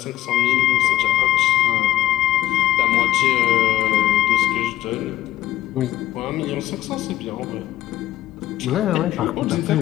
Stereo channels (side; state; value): right; quieter; 13.2 dB